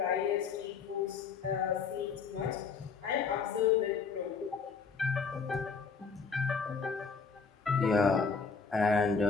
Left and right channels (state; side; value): quieter; right; 5.3 dB